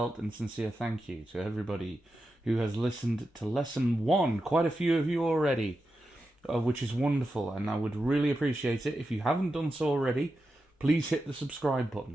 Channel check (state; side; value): normal; both; correlation 0.89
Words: and sincere thank you to everybody who has listened to lesson 1, quite a few of you already, which is wonderful, and I would really appreciate it. If you haven't done so already, please hit the subscribe